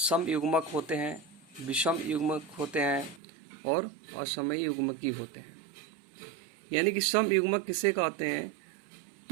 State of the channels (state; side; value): drops out; left; at 3.2 s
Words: होते हैं, विषम युग्मक होते हैं और असमय युग्मकी होते हैं। यानी कि समयुग्मक किसे कहते हैं?